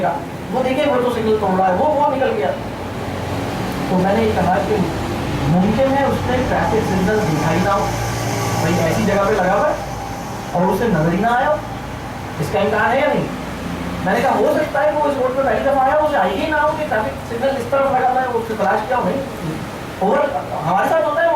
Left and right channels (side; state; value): both; identical; correlation 1.00